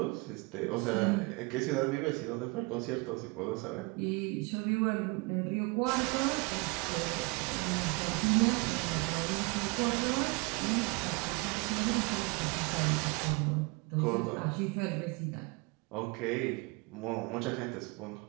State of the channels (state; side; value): quieter; left; 27.9 dB